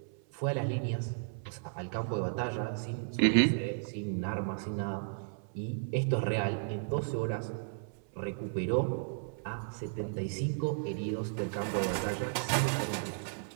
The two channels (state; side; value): silent; left; 55 dB below the other